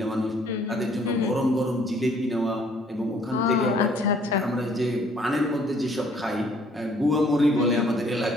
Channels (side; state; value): both; normal; correlation 0.61